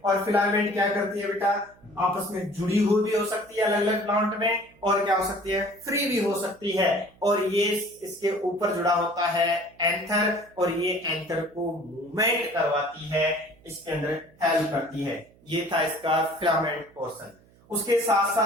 और फिलामेंट क्या करती है बेटा, आपस में जुड़ी हुई भी हो सकती है अलग अलग प्लांट में, और क्या हो सकती है, फ्री भी हो सकती है। और ये इसके ऊपर जुड़ा होता है एंथर, और ये एंथर को मूवमेंट करवाती है, इसके अंदर हेल्प करती है। ये था इसका फिलामेंट पोर्शन। उसके साथ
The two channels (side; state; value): right; noise; hum, 29 dB below the sound